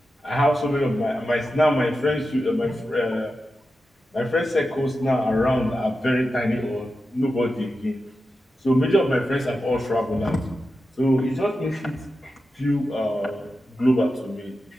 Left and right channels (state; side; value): normal; both; correlation 0.91